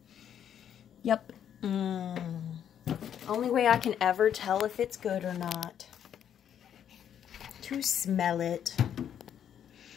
Yep. Only way I can ever tell if it's good or not. To smell it.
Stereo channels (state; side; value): quieter; right; 9.3 dB